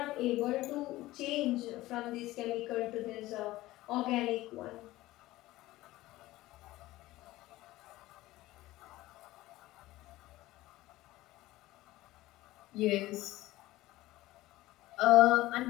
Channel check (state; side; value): quieter; right; 17.3 dB